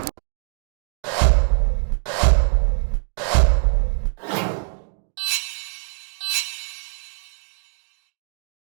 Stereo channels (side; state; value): left; silent; digital silence